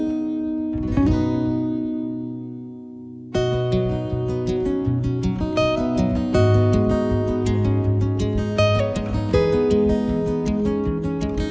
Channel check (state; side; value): identical; both; correlation 1.00